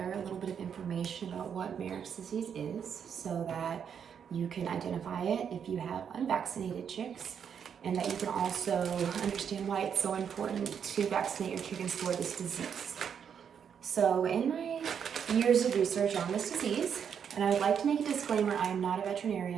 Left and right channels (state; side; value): quieter; left; 7.7 dB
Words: a little bit of information about what Mareks disease is so that you can identify it if you have unvaccinated chicks, and that you can also understand why it's so important to vaccinate your chickens for this disease. So in my years of research on this disease, and I would like to make a disclaimer, I am not a